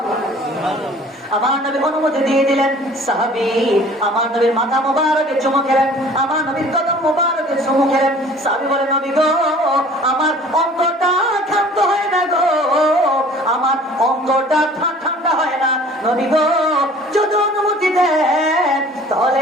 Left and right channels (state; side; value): normal; both; correlation 0.49